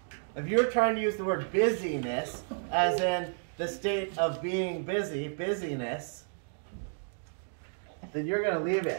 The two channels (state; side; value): silent; left; digital silence